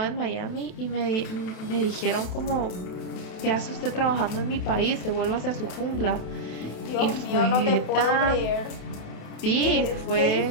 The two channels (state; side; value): late; right; 28 ms